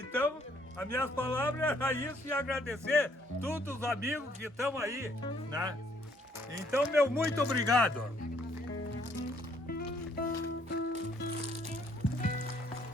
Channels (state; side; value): normal; both; correlation 0.66